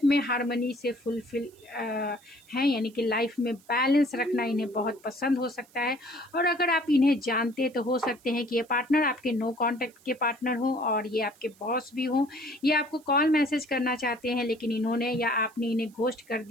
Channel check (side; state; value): right; noise; hiss, 28 dB below the sound